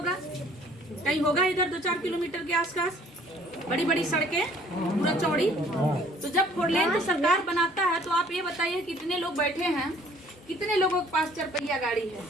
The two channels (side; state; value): both; normal; correlation 0.56